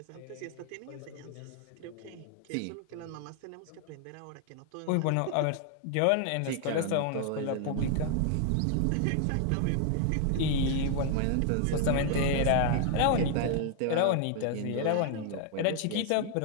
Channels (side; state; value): both; different; correlation 0.00